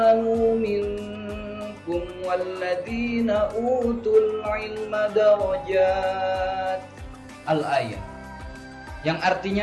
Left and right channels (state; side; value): identical; both; correlation 1.00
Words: minkum walladhina utul ilma darajat. Al-ayah. Yang